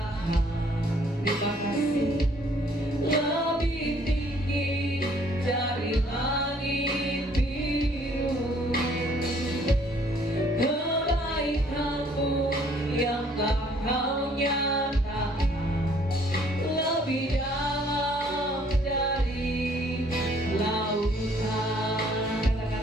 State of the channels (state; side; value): normal; both; correlation 0.61